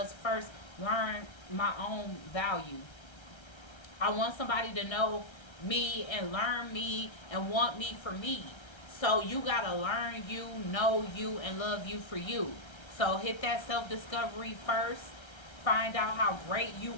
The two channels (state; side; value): late; right; 1.3 ms